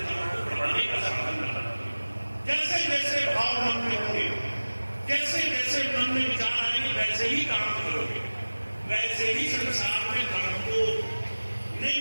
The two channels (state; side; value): inverted; both; correlation -1.00